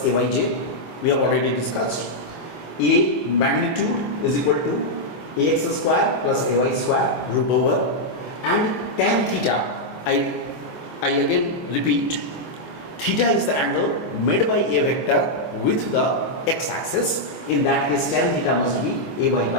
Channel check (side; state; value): right; late; 25 ms